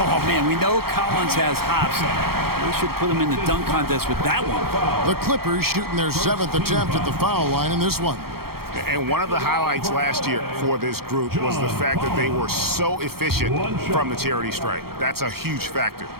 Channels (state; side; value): late; left; 0.94 ms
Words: man, we know Collins has hops. We should put him in the dunk contest with that one. The Clippers shooting their 7th attempt at the foul line in this one. And one of the highlights last year for this group was the fact that they were so efficient from the charity stripe. That's a huge factor.